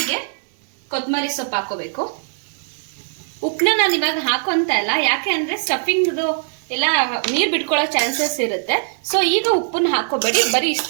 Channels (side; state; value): left; silent; digital silence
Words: ಕೊತ್ತಂಬರಿ ಸೊಪ್ಪು ಹಾಕೋಬೇಕು. ಉಪ್ಪನ್ನ ನಾನು ಇವಾಗ ಹಾಕೊಂತ ಇಲ್ಲ, ಯಾಕೆ ಅಂದ್ರೆ ಸ್ಟಫಿಂಗ್ದು ಎಲ್ಲ ನೀರು ಬಿಟ್ಕೊಳ್ಳೋ ಚಾನ್ಸಸ್ ಇರುತ್ತೆ. ಸೊ ಈಗ ಉಪ್ಪನ್ನ ಹಾಕೋಬೇಡಿ, ಬರೀ